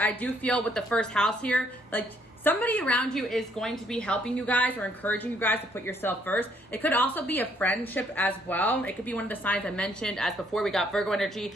do feel with the first house here, like somebody around you is going to be helping you guys or encouraging you guys to put yourself first. It could also be a friendship as well. It could be one of the signs I mentioned as before. We got Virgo energy,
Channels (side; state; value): both; normal; correlation 0.68